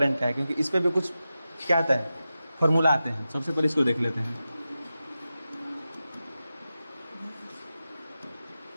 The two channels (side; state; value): both; inverted; correlation -0.92